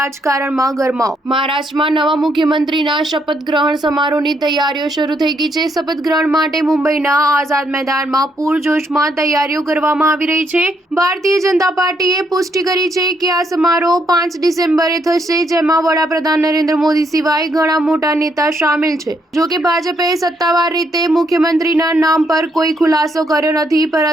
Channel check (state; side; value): normal; both; correlation 0.74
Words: ગરમાવો. મહારાષ્ટ્રમાં નવા મુખ્યમંત્રીના શપથ ગ્રહણ સમારોહની તૈયારીઓ શરૂ થઈ ગઈ છે. શપથ ગ્રહણ માટે મુંબઈના આઝાદ મેદાનમાં પૂરજોશમાં તૈયારીઓ કરવામાં આવી રહી છે. ભારતીય જનતા પાર્ટીએ પુષ્ટિ કરી છે કે આ સમારોહ 5 ડિસેમ્બરે થશે, જેમાં વડાપ્રધાન નરેન્દ્ર મોદી સિવાય ઘણા મોટા નેતા સામેલ છે. જોકે ભાજપે સત્તાવાર રીતે મુખ્યમંત્રીના નામ પર કોઈ ખુલાસો કર્યો નથી,